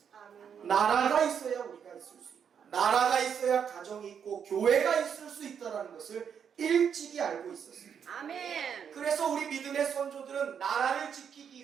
나라가 있어야 우리가 있을 수 있다. 나라가 있어야 가정이 있고 교회가 있을 수 있다는 것을 일찍이 알고 있었어요. 아멘. 그래서 우리 믿음의 선조들은 나라를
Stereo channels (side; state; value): left; quieter; 7.6 dB